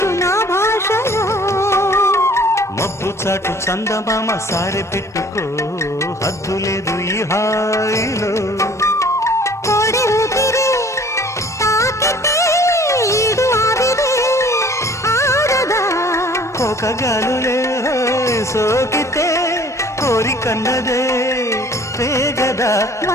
నా భాషలో మబ్బు చాటు చందమామ సారె పెట్టుకో హద్దు లేదు ఈ హాయిలో కోడి ఊపిరి తాకితే ఈడు ఆవిరి ఆరదా కోకగాలులే సోకితే కోరికన్నదే పేగదా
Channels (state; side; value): normal; both; correlation 0.52